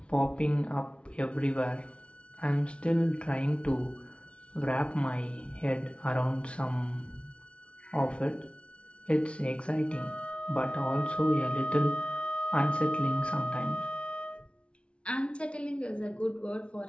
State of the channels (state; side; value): late; right; 0.059 ms